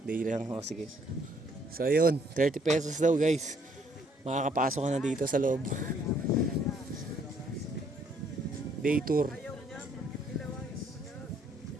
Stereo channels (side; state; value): both; normal; correlation 0.66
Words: Day lang. O sige. So ayun, 30 pesos daw guys. Makakapasok ka na dito sa loob. Day tour.